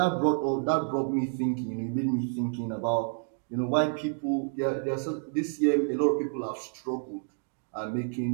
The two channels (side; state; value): left; silent; digital silence